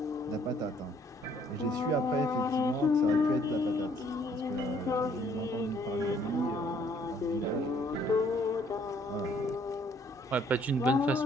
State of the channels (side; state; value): both; normal; correlation 0.63